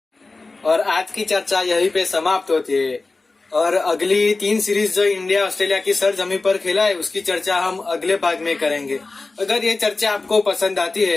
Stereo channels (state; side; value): quieter; right; 3.5 dB